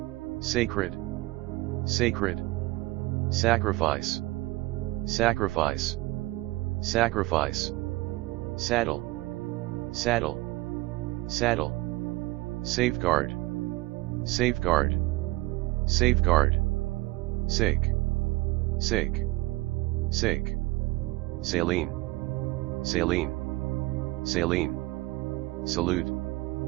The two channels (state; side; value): quieter; left; 20.2 dB